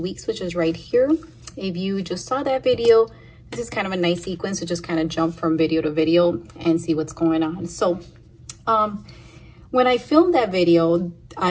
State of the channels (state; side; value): identical; both; correlation 1.00